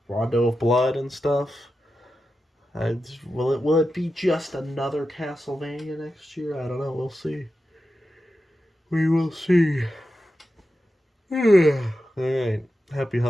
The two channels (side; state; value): both; normal; correlation 0.91